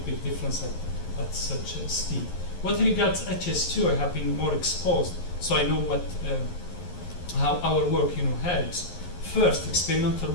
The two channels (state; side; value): late; right; 11 ms